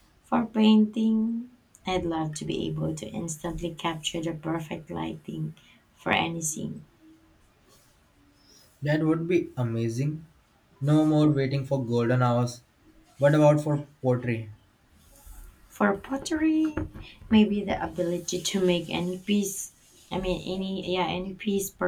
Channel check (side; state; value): both; identical; correlation 1.00